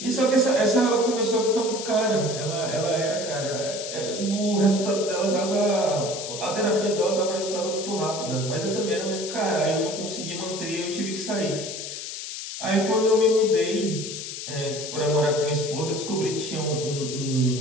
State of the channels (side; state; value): left; noise; hiss, 7 dB below the sound